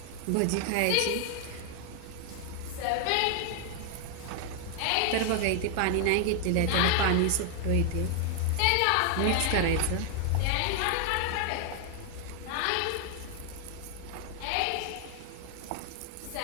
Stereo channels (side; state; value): both; different; correlation 0.00